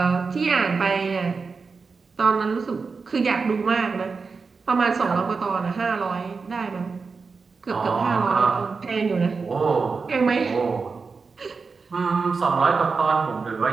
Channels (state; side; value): quieter; left; 4.7 dB